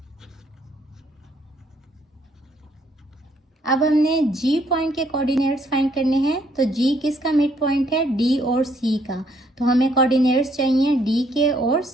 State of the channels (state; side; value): normal; both; correlation 0.69